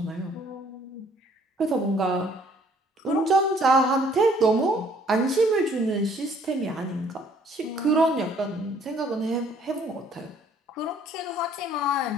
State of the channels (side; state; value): both; normal; correlation 0.60